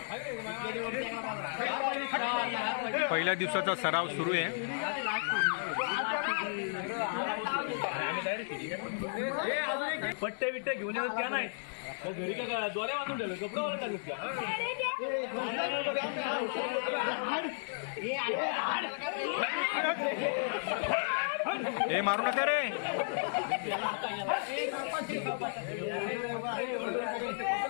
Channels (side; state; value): right; silent; digital silence